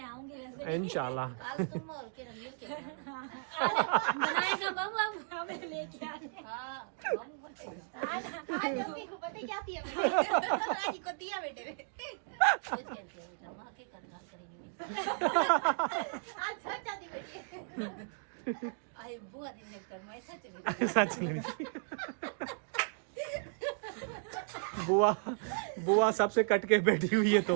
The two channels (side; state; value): left; silent; digital silence